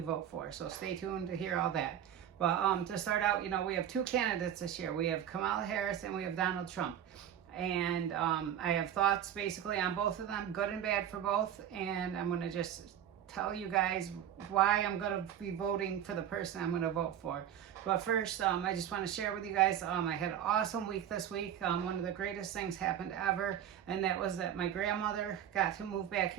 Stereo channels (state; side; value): quieter; left; 10.0 dB